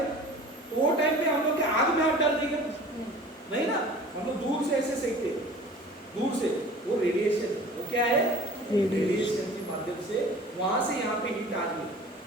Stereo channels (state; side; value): normal; both; correlation 0.44